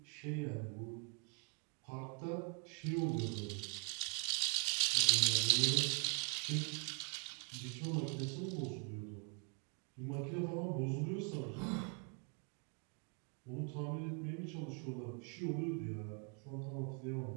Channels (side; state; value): left; quieter; 36.8 dB